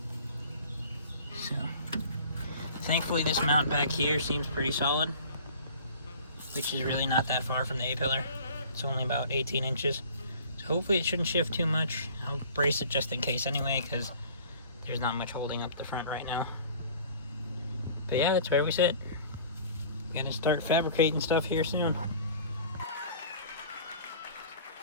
So thankfully this mount back here seems pretty solid, which is really not that far from the A-pillar. It's only about 18 inches. So hopefully it shouldn't shift too much. I'll brace it just in case anyway, because there's not much holding up the front right now. But yeah, that's where we sit. Gonna start fabricating stuff here soon.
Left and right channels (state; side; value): inverted; both; correlation -0.46